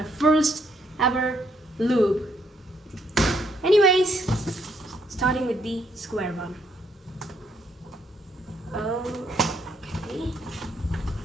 first ever lube. Anyways, starting with the square one. Okay.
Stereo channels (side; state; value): both; normal; correlation 0.72